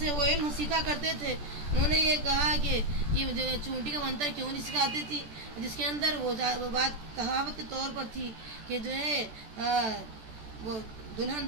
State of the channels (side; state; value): left; late; 14 ms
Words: وہ علم سیکھا کرتے تھے، انہوں نے یہ کہا کہ یہ جو چونٹی کا منتر کیوں نہیں سکھاتی تھی، جس کے اندر وہ بات کہاوت کے طور پر تھی کہ جو ہے وہ دلہن